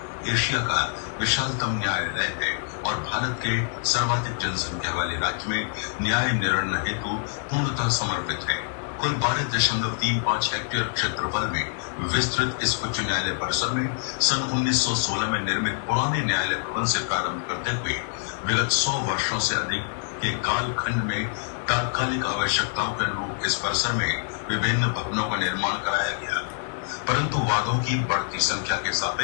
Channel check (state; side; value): silent; right; digital silence